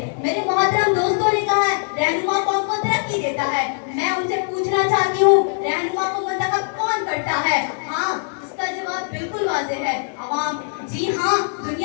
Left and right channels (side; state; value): right; silent; 62 dB below the other